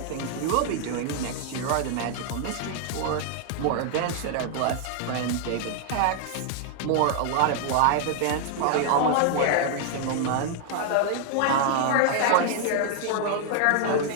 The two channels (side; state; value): both; different; correlation 0.00